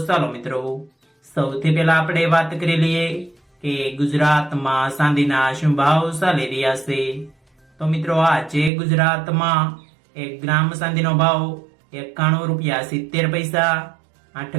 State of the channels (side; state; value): left; drops out; at 8.7 s